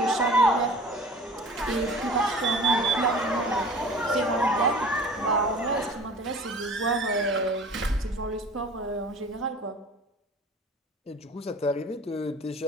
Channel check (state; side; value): normal; both; correlation 0.44